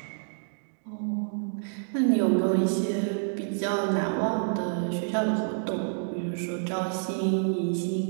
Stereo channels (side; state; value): left; silent; digital silence